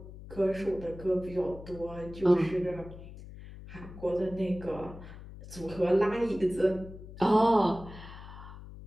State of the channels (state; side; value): noise; left; hum, 15 dB below the sound